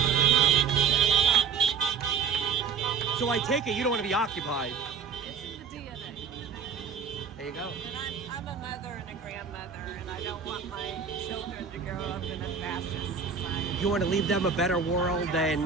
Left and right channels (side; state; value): left; quieter; 6.1 dB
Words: So I take it you don't want to be occupied. It's in the DNA. There you go. And I'm a mother and a grandmother, and I don't want my children to grow up in a fascist society. You want to leave them a better world